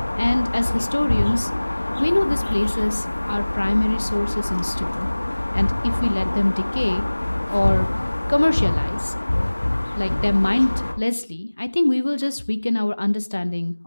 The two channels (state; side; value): inverted; both; correlation -1.00